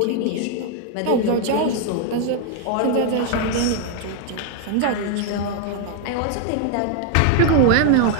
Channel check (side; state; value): both; different; correlation 0.00